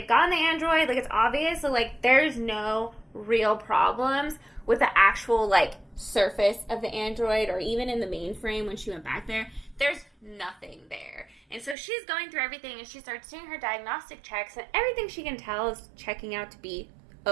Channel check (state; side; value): drops out; left; at 11.8 s